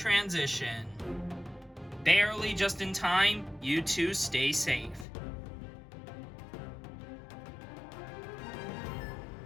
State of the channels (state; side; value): drops out; right; at 5.1 s